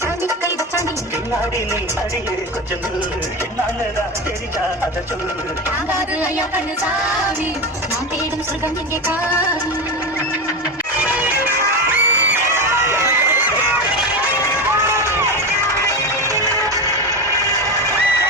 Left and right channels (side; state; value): both; normal; correlation 0.20